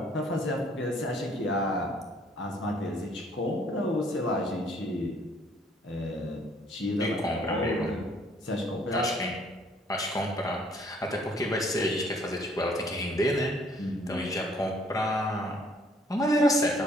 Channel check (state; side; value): normal; both; correlation 0.62